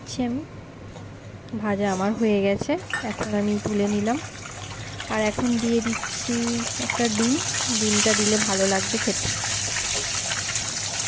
আমি। ভাজা আমার হয়ে গেছে, এখন আমি তুলে নিলাম। আর এখন দিয়ে দিচ্ছি একটা ডিম। ডিমটা দিলে ভালো লাগবে খেতে।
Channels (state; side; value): identical; both; correlation 1.00